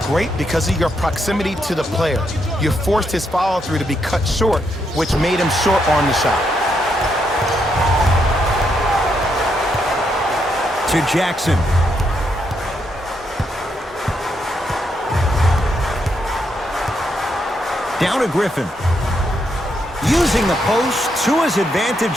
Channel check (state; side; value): normal; both; correlation 0.78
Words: because of your proximity to the player. You forced his follow-through to be cut short, which made him short on the shot. To Jackson. Down to Griffin. Using the post to his